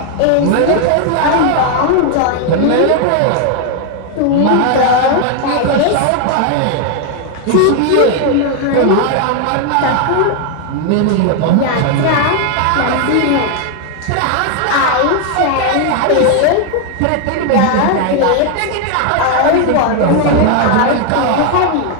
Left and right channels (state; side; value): different; both; correlation 0.01